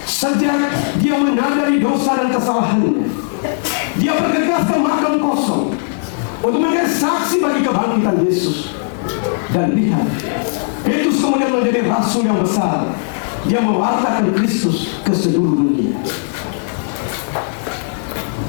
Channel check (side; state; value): right; silent; digital silence